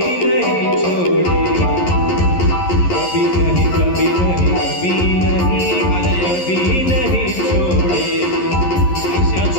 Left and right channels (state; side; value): late; right; 11 ms